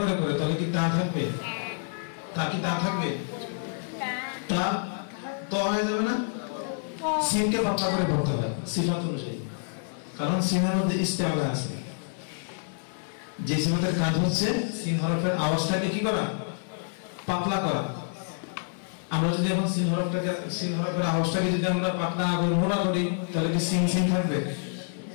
করে করে তাহলে কি তা থাকবে? তা কি তা থাকবে? তা ত হয়ে যাবে না? সিনকে পাতলা করে পড়তে হয় সিফাত অনুযায়ী, কারণ সিনের মধ্যে ইস্তেআলা আছে। যে সিফাতের কাজ হচ্ছে সিন হরফের আওয়াজটাকে কি করা? পাতলা করা। আমরা যদি এখন সিন হরফের আওয়াজটাকে যদি আমরা পাতলা করি, মোটা করি, তাহলে কি সিন সিন থাকবে?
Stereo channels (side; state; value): right; silent; 60 dB below the other